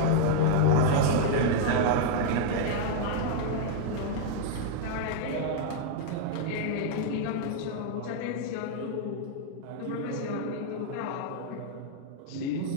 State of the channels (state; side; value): different; both; correlation 0.00